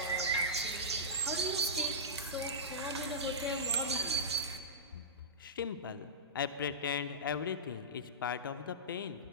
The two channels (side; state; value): both; normal; correlation -0.16